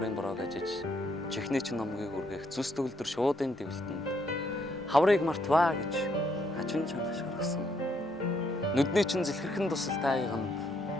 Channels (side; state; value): both; normal; correlation 0.72